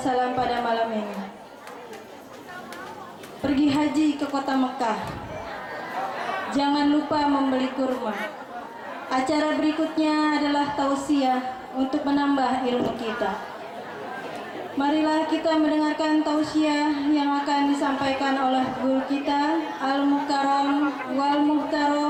pada malam ini. Pergi haji ke kota Mekah. Jangan lupa membeli kurma. Acara berikutnya adalah tausiah untuk menambah ilmu kita. Marilah kita mendengarkan tausiah yang akan disampaikan oleh guru kita Al-Mukarram wal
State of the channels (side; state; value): both; identical; correlation 1.00